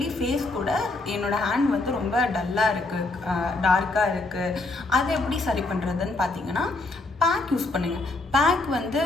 ஃபேஸ் கூட என்னோடய ஹேண்ட் வந்து ரொம்ப டல்லாக இருக்குது, டார்க்காக இருக்குது, அதை எப்படி சரி பண்ணுறதுன்னு பார்த்தீங்கன்னா பேக் யூஸ் பண்ணுங்கள். பேக் வந்து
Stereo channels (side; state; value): right; quieter; 3.1 dB